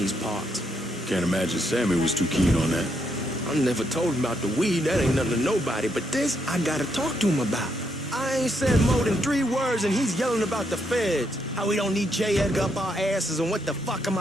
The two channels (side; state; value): both; normal; correlation 0.77